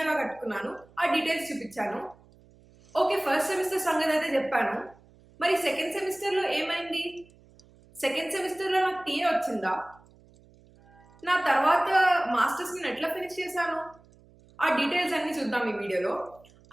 ఎలా కట్టుకున్నాను, ఆ డీటెయిల్స్ చూపించాను. ఓకే, ఫస్ట్ సెమిస్టర్ సంగతి అయితే చెప్పాను. మరి సెకండ్ సెమిస్టర్లో ఏమైంది? సెకండ్ సెమిస్టర్లో నాకు టీఏ వచ్చిందా? నా తర్వాత మాస్టర్స్ నేను ఎట్లా ఫినిష్ చేశాను, ఆ డీటెయిల్స్ అన్ని చూద్దాం ఈ వీడియోలో.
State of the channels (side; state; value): right; noise; hum, 27 dB below the sound